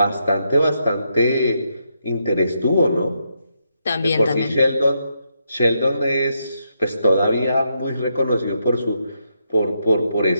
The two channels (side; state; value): both; inverted; correlation -0.80